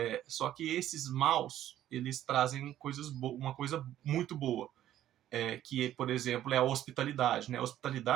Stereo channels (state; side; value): quieter; left; 12.3 dB